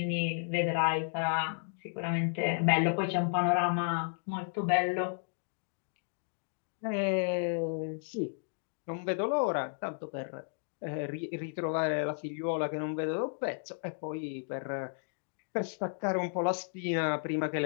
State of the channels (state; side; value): silent; right; digital silence